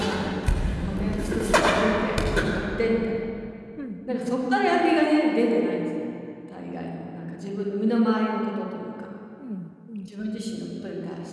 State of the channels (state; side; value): identical; both; correlation 1.00